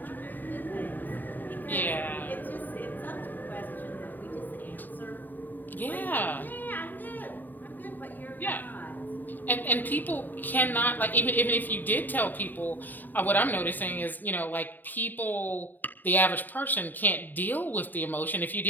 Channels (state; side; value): late; right; 0.088 ms